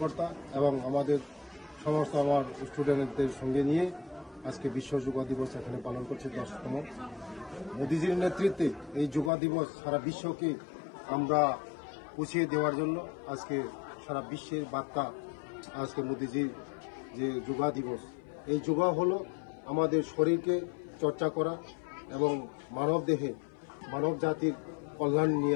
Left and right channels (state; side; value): drops out; right; at 9.3 s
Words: এবং আমাদের সমস্ত আমার স্টুডেন্টদের সঙ্গে নিয়ে আজকে বিশ্ব যোগ দিবস এখানে পালন করছি 10তম। মোদিজির নেতৃত্বে এই যোগ দিবস সারা বিশ্বকে আমরা পৌঁছিয়ে দেওয়ার জন্য আজকে সারা বিশ্বের বার্তা আজকে মোদিজির যে যোগ দিবস। এই যোগ হলো আমাদের শরীরকে চর্চা করা এবং মানব দেহে মানব জাতির কল্যাণ